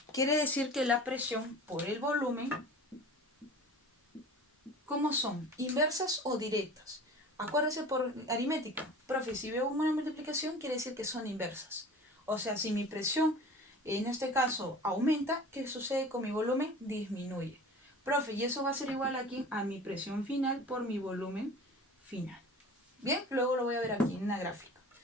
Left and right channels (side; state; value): both; normal; correlation 0.40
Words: Quiere decir que la presión por el volumen, ¿cómo son? ¿Inversas o directas? Acuérdese por aritmética. Profe, si veo una multiplicación, quiere decir que son inversas. O sea, si mi presión, en este caso, aumenta, ¿qué sucede con mi volumen? Disminuye. Profe, y eso va a ser igual aquí a mi presión final por mi volumen final. Bien, luego lo voy a ver aquí en una gráfica.